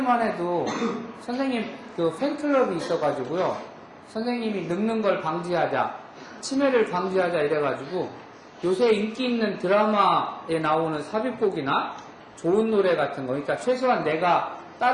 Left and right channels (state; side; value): identical; both; correlation 1.00